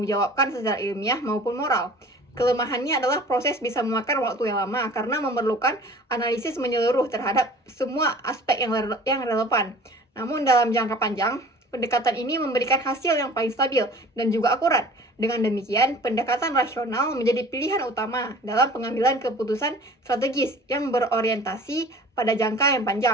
secara ilmiah maupun moral. Kelemahannya adalah proses bisa memakan waktu yang lama karena memerlukan analisis menyeluruh terhadap semua aspek yang relevan. Namun dalam jangka panjang, pendekatan ini memberikan hasil yang paling stabil dan juga akurat. Dengan demikian, pendekatan rasional menjadi pilihan utama dalam pengambilan keputusan strategis yang berorientasi pada jangka yang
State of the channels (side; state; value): both; normal; correlation 0.46